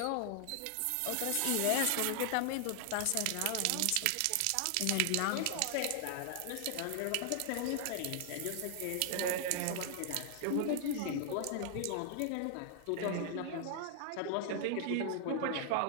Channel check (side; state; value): both; different; correlation 0.00